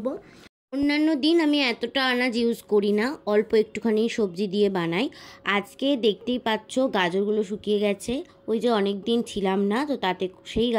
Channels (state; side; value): identical; both; correlation 1.00